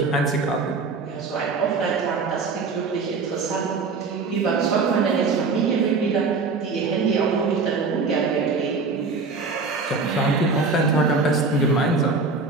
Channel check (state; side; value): quieter; left; 4.3 dB